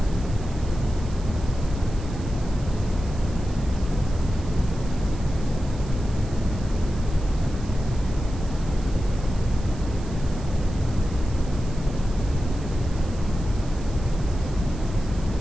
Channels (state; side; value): noise; right; hiss, 21 dB below the sound